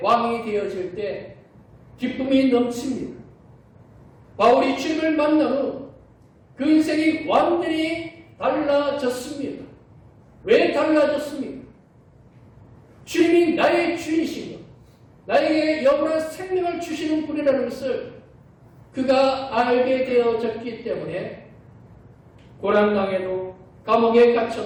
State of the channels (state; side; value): identical; both; correlation 1.00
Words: 왕이 되어질 때 기쁨이 넘칩니다. 바울이 주님을 만난 후 그 인생이 완전히 달라졌습니다. 왜 달라졌습니까? 주님이 나의 주인이신 것, 나에게 영원한 생명을 주시는 분이라는 것을 그가 알게 되어졌기 때문에 고난당해도 감옥에